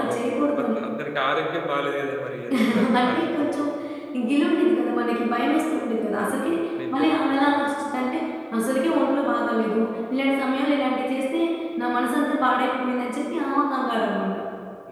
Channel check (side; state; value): both; identical; correlation 1.00